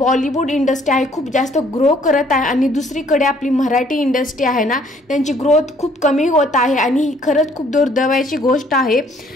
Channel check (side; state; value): both; normal; correlation 0.62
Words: इंडस्ट्री आहे खूप जास्त ग्रो करत आहे आणि दुसरीकडे आपली मराठी इंडस्ट्री आहे ना, त्यांची ग्रोथ खूप कमी होत आहे आणि ही खरंच खूप दुर्दैवाची गोष्ट आहे।